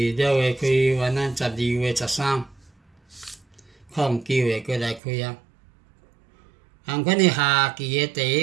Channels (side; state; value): left; drops out; at 5.0 s